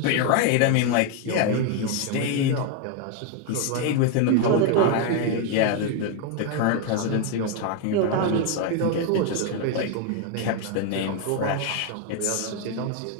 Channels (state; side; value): different; both; correlation 0.01